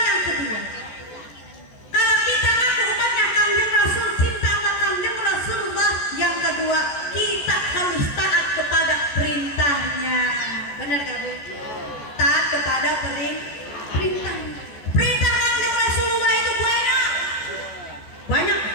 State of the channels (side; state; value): right; late; 14 ms